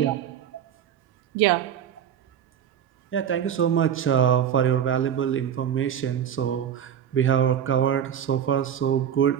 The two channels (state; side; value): quieter; left; 9.1 dB